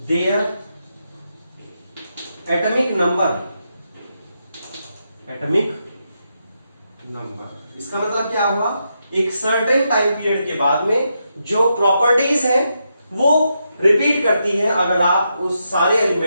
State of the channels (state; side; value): inverted; both; correlation -0.83